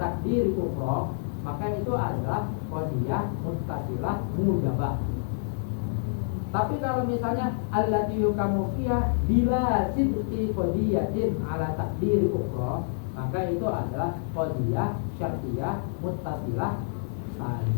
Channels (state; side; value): silent; right; digital silence